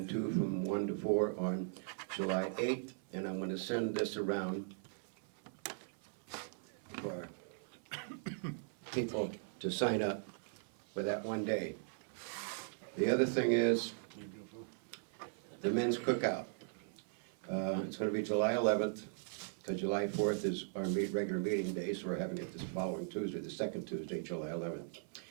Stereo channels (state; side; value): silent; left; 52 dB below the other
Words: 2 from 1 to 4 on July 8th, and I'm gonna send this around for people to sign up for that one day. The other thing is the men's cookout. It's gonna be July 11th, because July 4th is our regular meeting day, so we're having it this following Tuesday, the second Tuesday, July 11th.